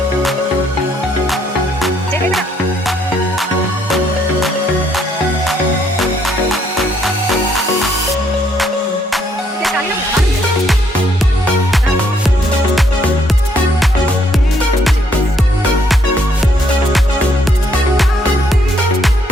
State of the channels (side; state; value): both; normal; correlation 0.70